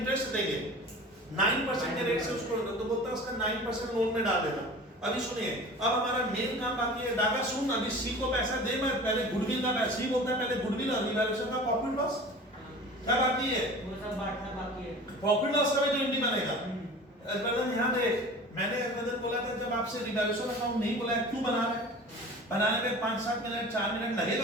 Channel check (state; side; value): normal; both; correlation 0.39